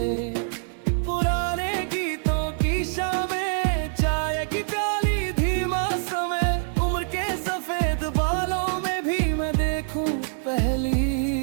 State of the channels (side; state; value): left; silent; 62 dB below the other